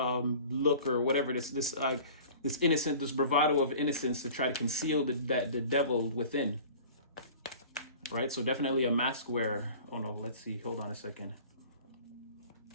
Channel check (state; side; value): inverted; both; correlation -0.44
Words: or whatever, this innocent, this bravado of innocence to try to conceal the devil within, right? So definitely a mask wearer. Oh no, let's see, hold on a second.